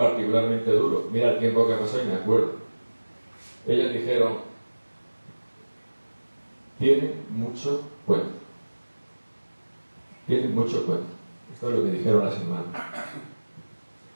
duro. Mira el tiempo que pasó y me acuerdo. Ellas dijeron: tiene mucho cuento. Tiene mucho cuento. Esto es lo que dijeron las hermanas.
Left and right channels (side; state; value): both; inverted; correlation -1.00